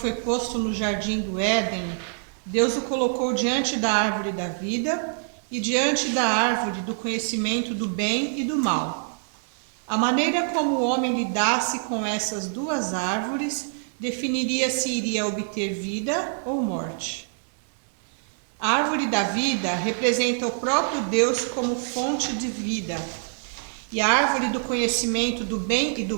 posto no jardim do Éden, Deus o colocou diante da árvore da vida e diante da árvore do conhecimento do bem e do mal. A maneira como o homem lidasse com essas duas árvores definiria se iria obter vida ou morte. A árvore da vida representa o próprio Deus como fonte de vida, e a árvore do conhecimento do bem e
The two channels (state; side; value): silent; left; digital silence